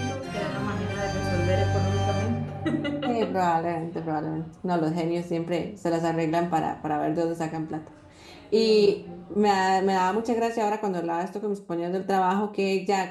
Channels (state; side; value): identical; both; correlation 1.00